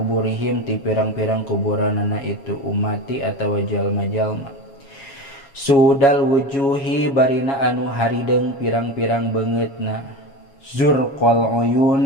ti pirang-pirang kuburanana itu umati atawa jalma-jalma sudal wujuhi barina anu harideng pirang-pirang beungeutna zurqal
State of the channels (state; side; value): late; right; 7.3 ms